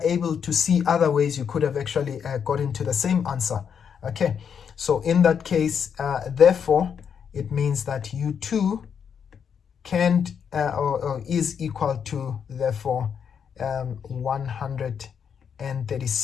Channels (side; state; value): right; quieter; 7.4 dB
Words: able to see other ways you could have actually got into the same answer, okay? So in that case, therefore, it means that U2 can't or is equal to, therefore,